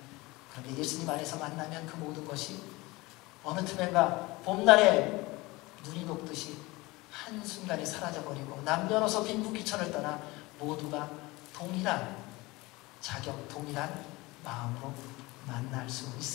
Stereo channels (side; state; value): right; quieter; 22.0 dB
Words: 그런데 예수님 안에서 만나면 그 모든 것이 어느 틈엔가 봄날에 눈이 녹듯이 한순간에 사라져버리고 남녀노소 빈부귀천을 떠나 모두가 동일한 자격, 동일한 마음으로 만날 수